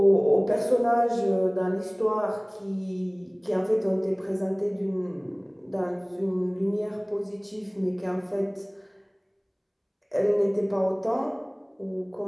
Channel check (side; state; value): both; identical; correlation 1.00